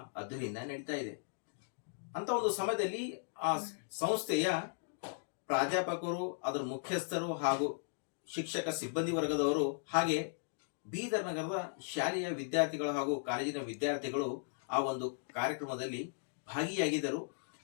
ಅದ್ದೂರಿಯಿಂದ ನಡೀತಾ ಇದೆ. ಅಂತ ಒಂದು ಸಮಯದಲ್ಲಿ ಆ ಸಂಸ್ಥೆಯ ಪ್ರಾಧ್ಯಾಪಕರು, ಅದರ ಮುಖ್ಯಸ್ಥರು ಹಾಗೂ ಶಿಕ್ಷಕ ಸಿಬ್ಬಂದಿ ವರ್ಗದವರು ಹಾಗೆ ಬೀದರ್ ನಗರದ ಶಾಲೆಯ ವಿದ್ಯಾರ್ಥಿಗಳು ಹಾಗೂ ಕಾಲೇಜಿನ ವಿದ್ಯಾರ್ಥಿಗಳು ಆ ಒಂದು ಕಾರ್ಯಕ್ರಮದಲ್ಲಿ ಭಾಗಿಯಾಗಿದ್ದರು.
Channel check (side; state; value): right; silent; digital silence